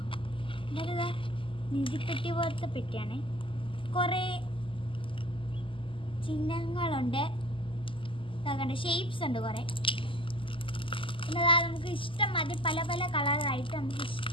എന്നിട്ട് നിധിപ്പെട്ടി പോലത്തെ പെട്ടിയാണ്. കുറേ ചിഹ്നങ്ങളുണ്ട്, ഷേപ്സ് ഉണ്ട് കുറേ. പിന്നെ നമുക്ക് ഇഷ്ടം മാതിരി പല പല കളറായിട്ട് നമുക്ക്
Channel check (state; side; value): late; right; 0.25 ms